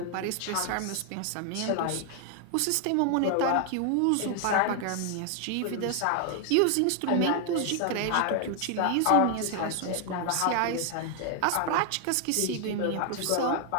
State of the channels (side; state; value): both; different; correlation 0.00